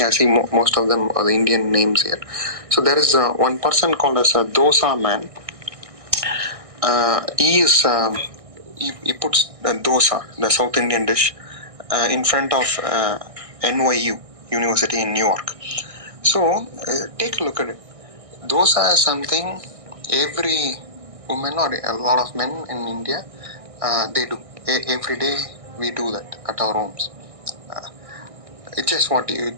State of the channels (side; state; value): left; late; 1.6 ms